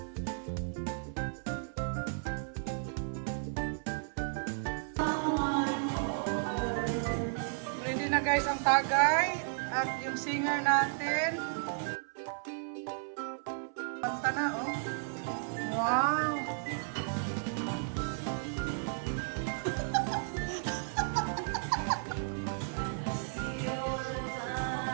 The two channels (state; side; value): silent; left; 55 dB below the other